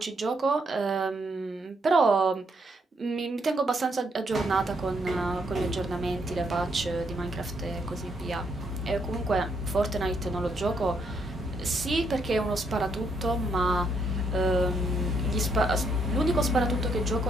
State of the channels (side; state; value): both; normal; correlation 0.74